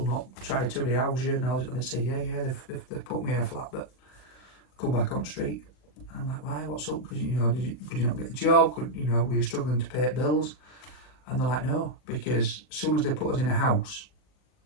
not tried to rehouse you? And they'd say, yeah, they've put me in a flat, but I come back on the street. And I'm like, why? What's up? Because could you not get a job? Were you struggling to pay bills? And they're like, no, because as soon as they put us in a house,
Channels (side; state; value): right; late; 40 ms